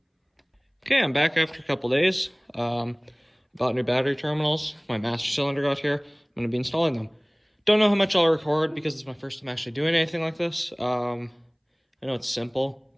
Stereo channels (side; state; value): both; identical; correlation 1.00